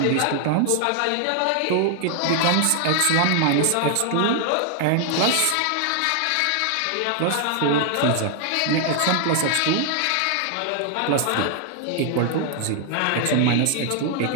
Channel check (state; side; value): different; both; correlation 0.00